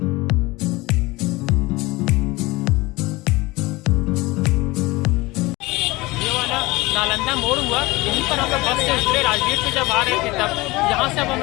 नालंदा मोड़ हुआ, यहीं पर हम लोग बस से उतरे। राजगीर से जब आ रहे थे तब यहाँ से अब हम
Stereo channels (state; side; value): quieter; right; 21.7 dB